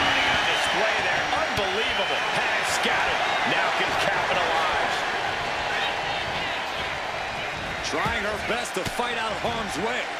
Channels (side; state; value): both; identical; correlation 1.00